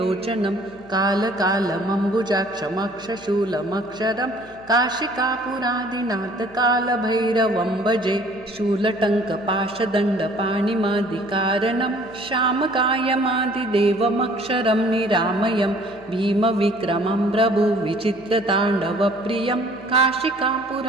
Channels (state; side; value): noise; left; hum, 24 dB below the sound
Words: कालकालमम्बुजाक्षमक्षशूलमक्षरं काशिकापुरादिनाथकालभैरवं भजे शूलटङ्कपाशदण्डपाणिमादिकारणं श्यामकायमादिदेवमक्षरं निरामयं भीमविक्रमं प्रभुविचित्रताण्डवप्रियं